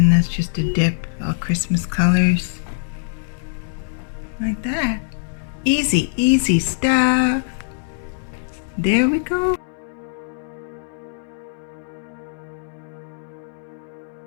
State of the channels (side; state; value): right; silent; digital silence